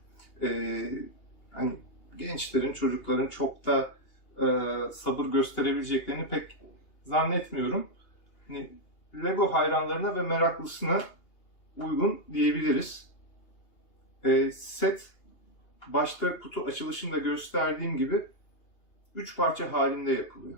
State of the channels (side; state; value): right; late; 2.8 ms